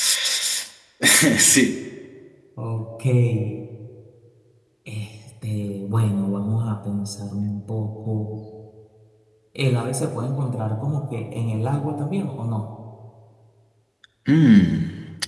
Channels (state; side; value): identical; both; correlation 1.00